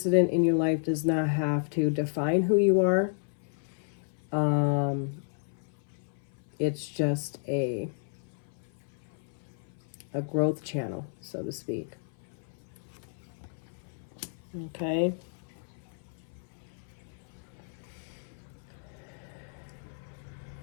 in your life does not have to define who you are. It's just a growth channel, so to speak. Okay?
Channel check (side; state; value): right; silent; 56 dB below the other